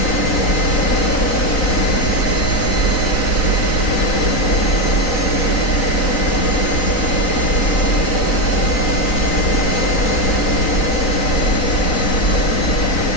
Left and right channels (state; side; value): late; right; 3.9 ms